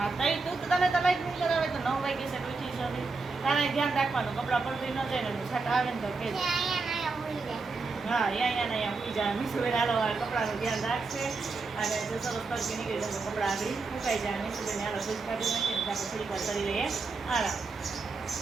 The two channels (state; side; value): quieter; left; 4.1 dB